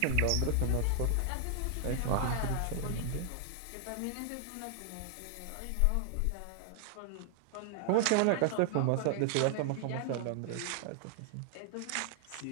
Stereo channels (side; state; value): both; different; correlation 0.00